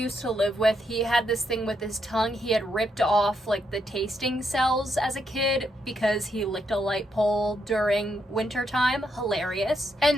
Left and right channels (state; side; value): normal; both; correlation 0.78